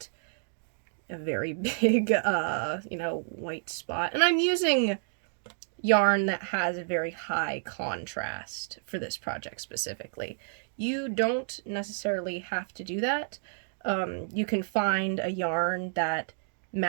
a very big, white spot. And I'm using yarn that has a very high contrast for this project specifically. You don't necessarily have to do that. You can find a yarn that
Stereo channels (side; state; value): left; silent; digital silence